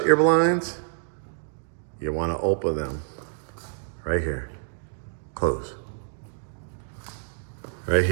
your blinds? You want to open them. Right here. Close. Right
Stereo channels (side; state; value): left; silent; digital silence